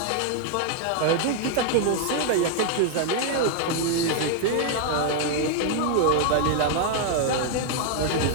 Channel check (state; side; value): different; both; correlation 0.00